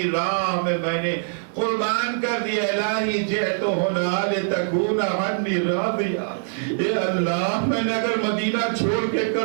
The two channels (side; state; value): left; silent; digital silence